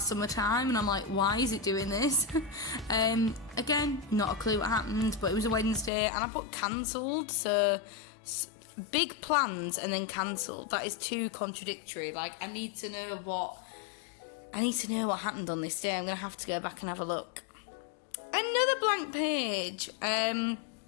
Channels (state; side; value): drops out; right; at 5.9 s